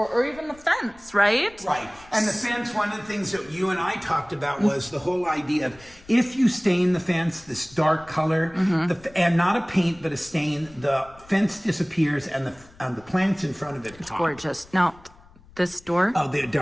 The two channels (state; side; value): noise; left; rumble, 25 dB below the sound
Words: or even the fence, right? Right. And the fence, one of the things that you and I talked about was the whole idea of, if you stain the fence this dark color, and not a paint, but a stain, the fence disappears and the plants in front of it pop. Gorgeous. No, This door? Oh, the